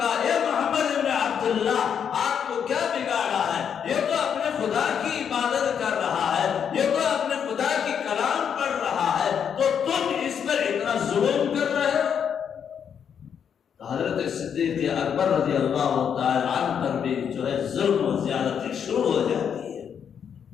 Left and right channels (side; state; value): right; quieter; 7.8 dB